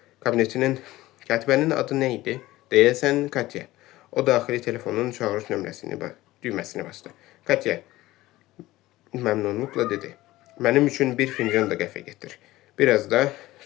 Katibənin adı nə idi? Deyəsən Katya. O daxili telefonun çağırış düyməsini bastı. Katya məmnunluqla dedi. Mənim üçün bir fincan da qəhvə getir. Biraz da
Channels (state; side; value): quieter; right; 17.3 dB